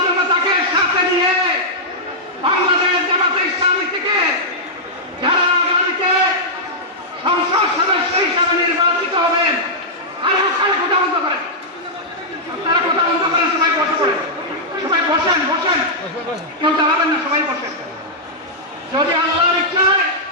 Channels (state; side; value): normal; both; correlation -0.10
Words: জনতাকে সাথে নিয়ে বাংলাদেশ জামাতে ইসলামী থেকে যারা আগামীতে সংসদ সদস্য হিসাবে নির্বাচিত হবেন, আর ওখানে কথা বন্ধ করেন, তারা কথা বন্ধ করেন, সবাই বসে পড়েন, সবাই বসেন বসেন, কেউ দাঁড়াবেন না, সবাই বসেন। যদি আল্লাহর ইচ্ছায়